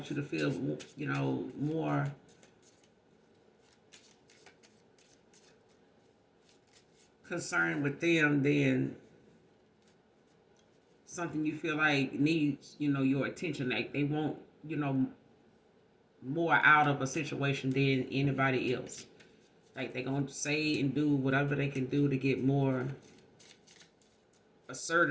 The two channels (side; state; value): both; identical; correlation 1.00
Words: you to feel, more concerned with them than something you feel like needs, your attention. Like they want, more out of a situation than anybody else. Like they're going to say and do whatever they can do to get more